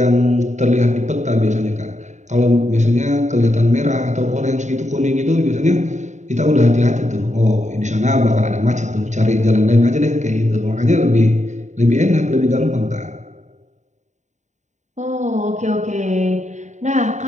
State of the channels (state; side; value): late; left; 0.34 ms